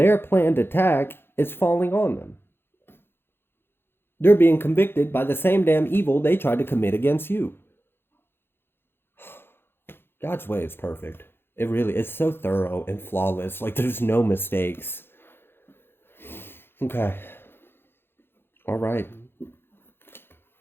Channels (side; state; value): right; late; 0.11 ms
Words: planned attack is falling on them. They're being convicted by the same damn evil they tried to commit against you. God's way is perfect. It really is so thorough and flawless. Like, there's no mistakes. Okay. All right.